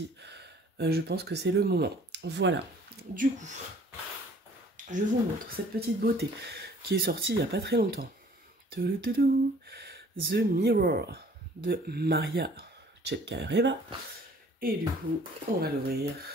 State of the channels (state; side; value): normal; both; correlation 0.54